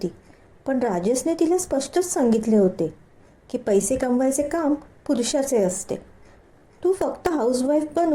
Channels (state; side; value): identical; both; correlation 1.00